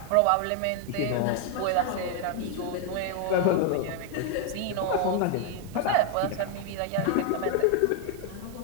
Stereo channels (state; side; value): different; both; correlation 0.01